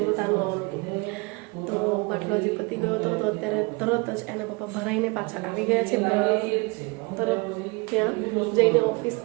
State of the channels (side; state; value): left; quieter; 28.0 dB